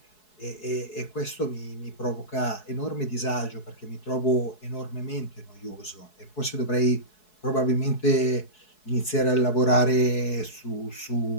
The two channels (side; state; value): right; late; 4.7 ms